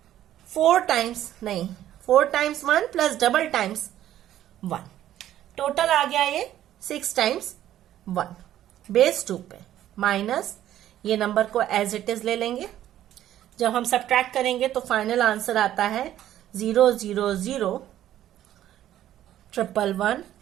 4 times 1 plus double times 1, total आ गया ये 6 टाइम्स 1 बेस 2 पे, माइनस ये नंबर को एज इट इज ले लेंगे। जब हम सब्ट्रैक्ट करेंगे तो फाइनल आंसर आता है 0001111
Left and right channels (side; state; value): left; quieter; 12.3 dB